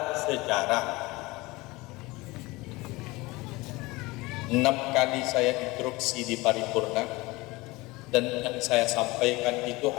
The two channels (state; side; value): quieter; right; 22.1 dB